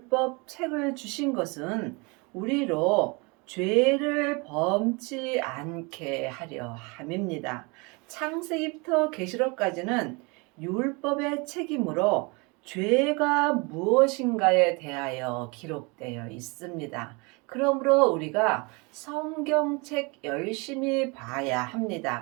책을 주신 것은 우리로 죄를 범치 않게 하려 함입니다. 창세기부터 계시록까지는 율법의 책임으로 죄가 무엇인가에 대하여 기록되어 있습니다. 그러므로 우리가 성경책 열심히 봐야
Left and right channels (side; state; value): left; quieter; 28.9 dB